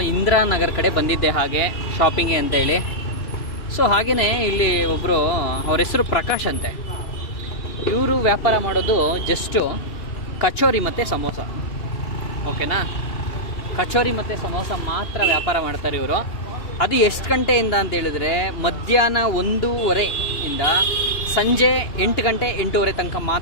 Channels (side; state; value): right; late; 2.7 ms